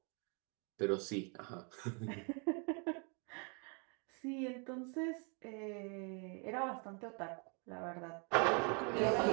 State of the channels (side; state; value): left; quieter; 36.2 dB